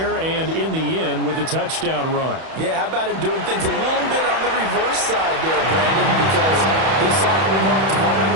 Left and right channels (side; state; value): left; late; 31 ms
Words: and in the end with the touchdown run. Yeah, how about him doing things a little bit on the reverse side there, Brandon, because he saw Lamar throwing